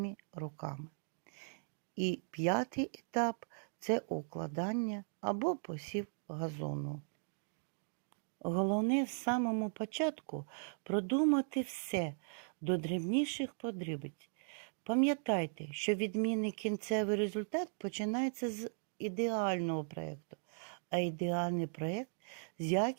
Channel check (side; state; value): left; silent; digital silence